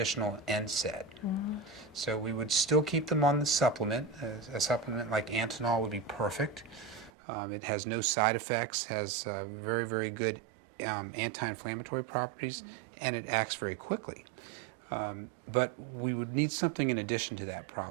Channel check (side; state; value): left; drops out; at 7.1 s